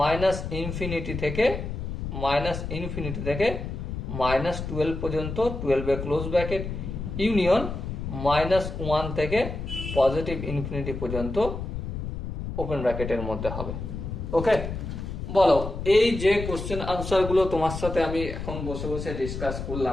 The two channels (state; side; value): noise; left; rumble, 6 dB below the sound